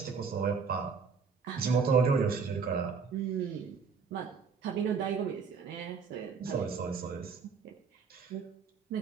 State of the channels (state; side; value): quieter; left; 5.6 dB